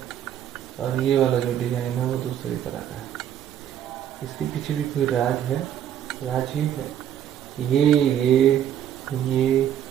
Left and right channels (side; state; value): left; quieter; 10.3 dB